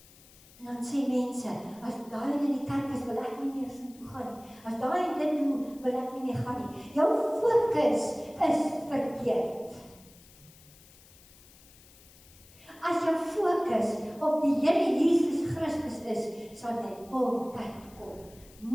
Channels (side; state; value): left; noise; hiss, 24 dB below the sound